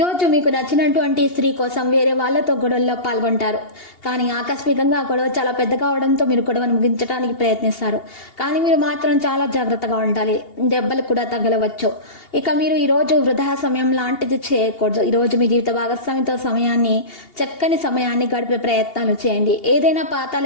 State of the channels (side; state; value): right; late; 2.8 ms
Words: మీకు నచ్చినటువంటి స్త్రీ కోసం వేరే వాళ్ళతో గొడవల్లో పాల్గొంటారు. కానీ ఆకస్మికంగా గొడవ చాలా పెద్దగా అవడంతో మీరు గొడవను ముగించడానికి ప్రయత్నిస్తారు. కానీ మీరు మాత్రం చాలా జాగ్రత్తగా ఉండాలి. దెబ్బలు కూడా తగలవచ్చు. ఇక మీరు ఈరోజు వృధా సమయం లాంటిది చేయకూడదు. ఈరోజు మీ జీవిత భాగస్వామితో చక్కని సమయాన్ని గడిపే ప్రయత్నాలు చేయండి. ఏదైనా పాత